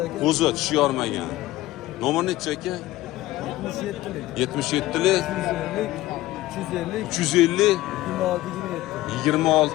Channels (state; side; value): quieter; right; 16.6 dB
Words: aka. Qo'zi tishi yormagan. Nomer nechi aka? 77lik 350 350